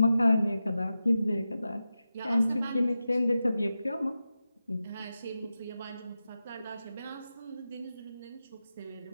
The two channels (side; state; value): both; inverted; correlation -0.92